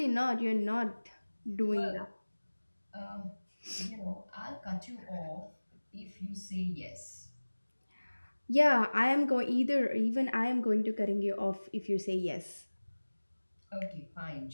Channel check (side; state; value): both; inverted; correlation -1.00